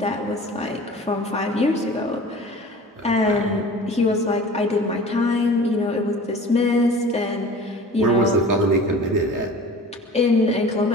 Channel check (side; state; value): both; normal; correlation 0.41